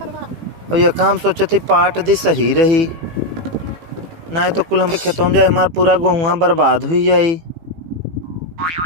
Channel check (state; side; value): late; left; 18 ms